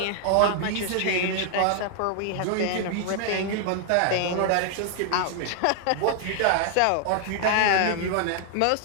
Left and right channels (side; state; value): both; different; correlation 0.00